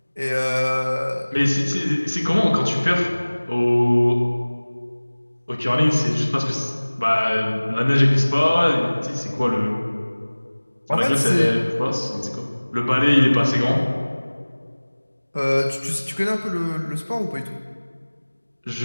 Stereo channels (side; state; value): both; inverted; correlation -1.00